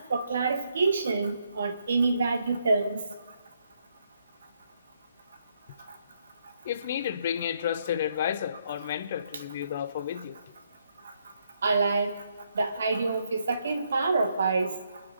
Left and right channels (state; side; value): inverted; both; correlation -0.75